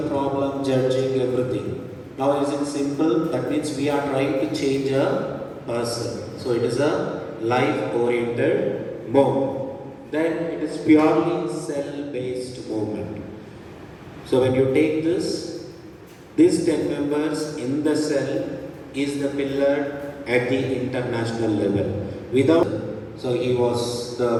problem, judging everything, now is it simple? That means we are trying to change a person. So it is a life-oriented movement. Then it is purely cell-based movement. So when you take this, these 10 members in the cell is the pillar at the international level. So he was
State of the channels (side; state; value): both; identical; correlation 1.00